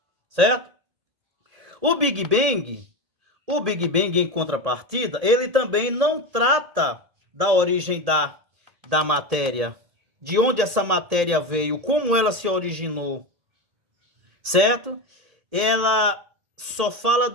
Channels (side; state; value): left; late; 1.8 ms